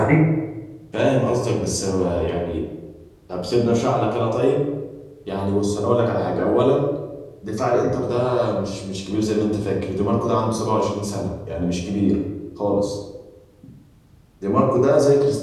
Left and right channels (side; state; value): both; identical; correlation 1.00